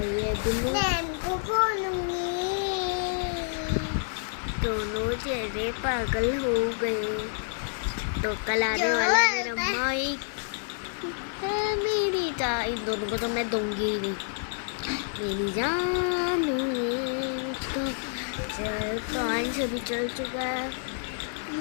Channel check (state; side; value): silent; right; digital silence